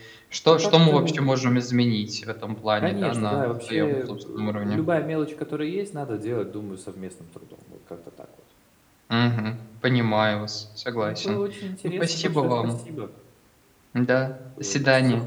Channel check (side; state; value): both; identical; correlation 1.00